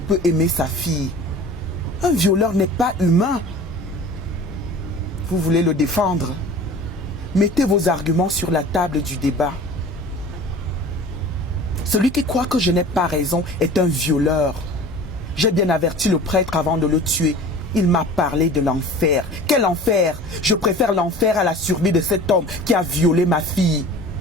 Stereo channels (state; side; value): normal; both; correlation 0.41